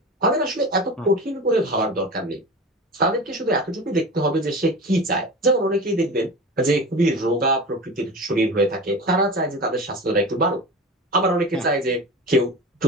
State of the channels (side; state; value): both; normal; correlation 0.31